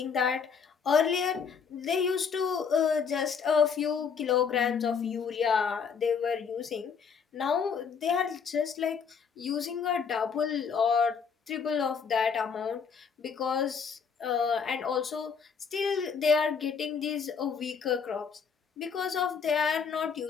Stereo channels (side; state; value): right; quieter; 6.2 dB